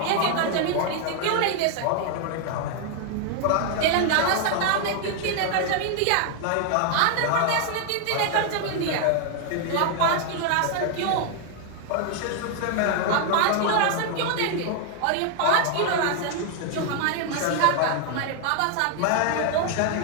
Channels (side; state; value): both; different; correlation 0.00